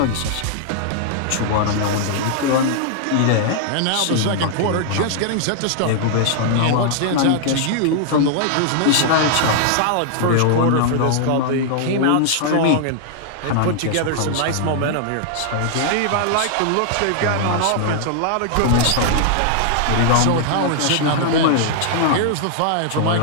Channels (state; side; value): different; both; correlation -0.01